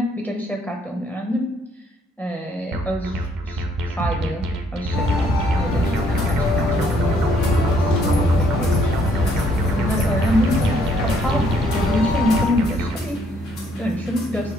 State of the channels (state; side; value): normal; both; correlation 0.67